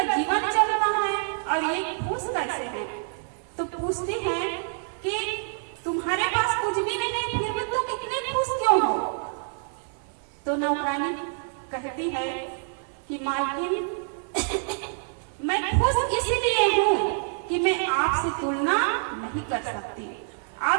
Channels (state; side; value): silent; left; 60 dB below the other